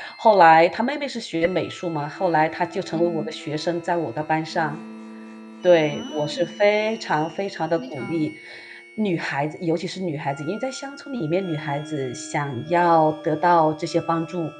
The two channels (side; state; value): both; identical; correlation 1.00